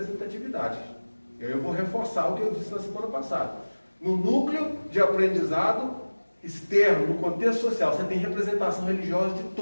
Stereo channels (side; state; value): both; inverted; correlation -1.00